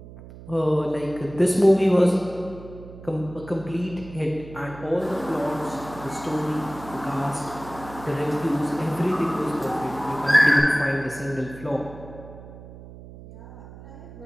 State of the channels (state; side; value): noise; right; hum, 16 dB below the sound